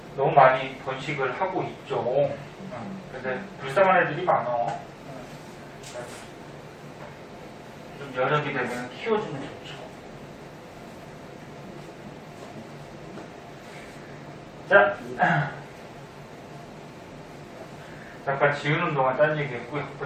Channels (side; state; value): both; identical; correlation 1.00